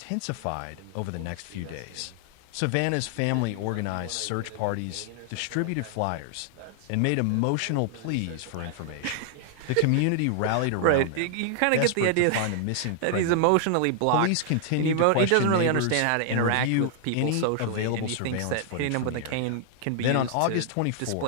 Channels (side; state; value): both; different; correlation 0.00